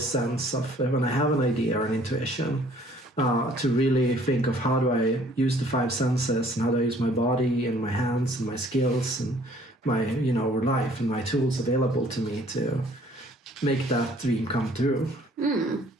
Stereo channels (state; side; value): normal; both; correlation 0.57